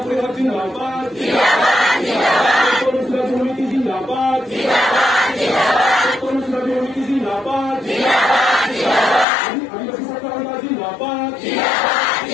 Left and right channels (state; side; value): drops out; right; at 9.2 s